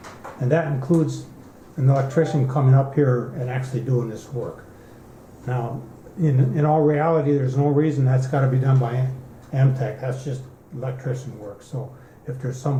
and that includes an electrician coming up here and actually doing this work. Now, in all reality, there's no reason that's got to be done by MTech. That's just electrician work. So if there's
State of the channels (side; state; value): both; identical; correlation 1.00